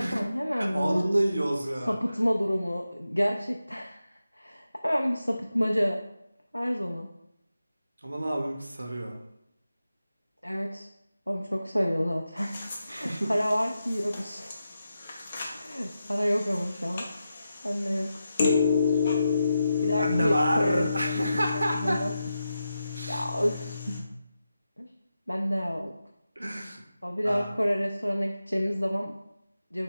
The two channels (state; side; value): inverted; both; correlation -0.89